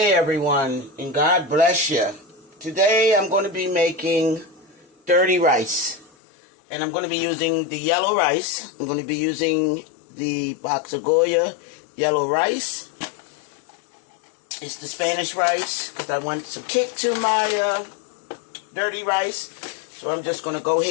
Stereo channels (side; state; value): right; drops out; at 6.1 s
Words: everyone, and God bless you. Today I'm going to be making dirty rice, and I'm going to be using the yellow rice. I'm going to be using the box of Goya yellow rice. It's the Spanish rice because I want some kick to my dirty rice. So I'm just going to go